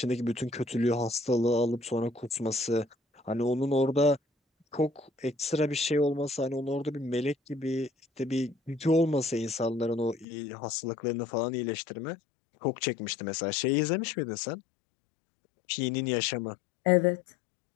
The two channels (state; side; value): drops out; right; at 10.2 s